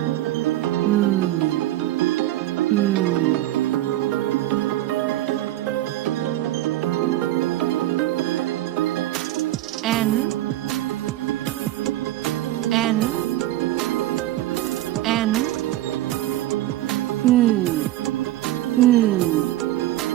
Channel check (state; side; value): quieter; left; 14.9 dB